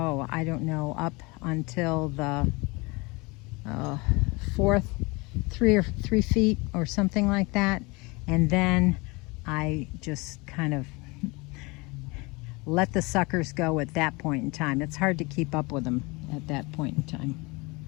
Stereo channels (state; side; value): quieter; right; 26.0 dB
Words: don't know, up until the 3 feet or something like that, and then I just kind of let the suckers go at that point in time. It's hard to keep up with them at that point in time.